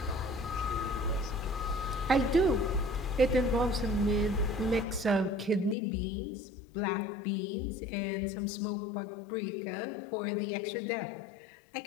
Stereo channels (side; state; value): right; drops out; at 5.8 s